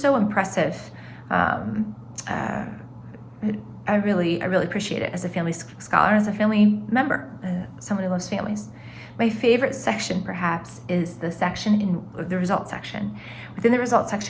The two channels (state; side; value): identical; both; correlation 1.00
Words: so impressive. I really appreciate it as a family scholar and as a family member, someone who loves families. My favorite section, perhaps, is the section in the results section. Within the results